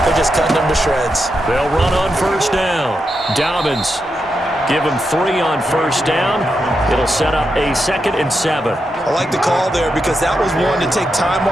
they're just cutting them to shreds. They'll run on first down. Dobbins, give them 3 on first down. It'll set up a 2nd and 7. I like the call there because that was one to take time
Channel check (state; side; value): normal; both; correlation 0.85